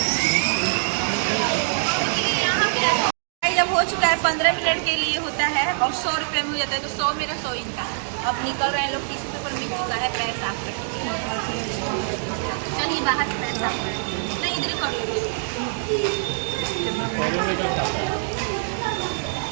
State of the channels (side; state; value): left; silent; digital silence